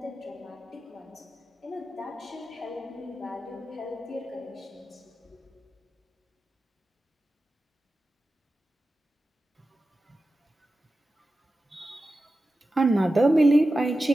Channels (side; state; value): both; normal; correlation 0.93